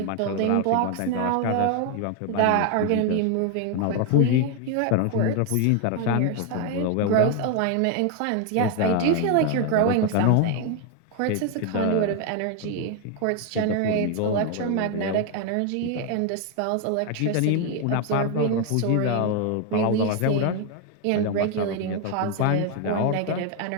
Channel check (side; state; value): both; different; correlation 0.01